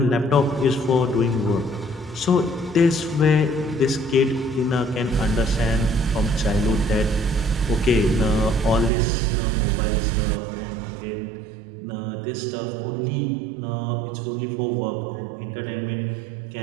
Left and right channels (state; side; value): drops out; left; at 8.9 s